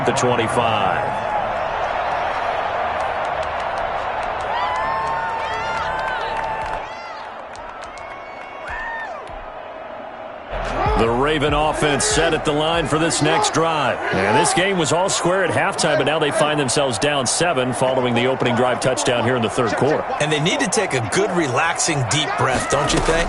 the 25. The Raven offense set at the line for this next drive. And this game was all square at halftime, but now they find themselves down 7 following the opening drive touchdown here in the third quarter. And they need to take a good, relaxing, deep breath, don't you think?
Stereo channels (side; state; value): both; identical; correlation 1.00